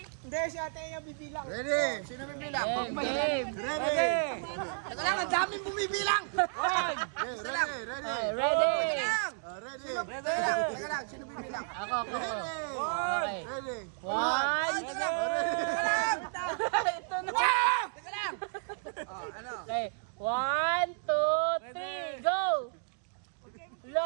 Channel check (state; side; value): silent; left; digital silence